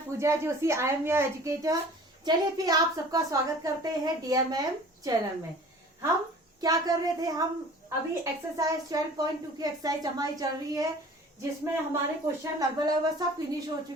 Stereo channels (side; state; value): both; normal; correlation 0.46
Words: Pooja Joshi, I am your educator. चलिए फिर आप सबका स्वागत करते हैं DMM चैनल में। हम क्या कर रहे थे, हम अभी एक्सरसाइज 12.2 की एक्सरसाइज हमारी चल रही है, जिसमें हमारे क्वेश्चन लगभग सब फिनिश हो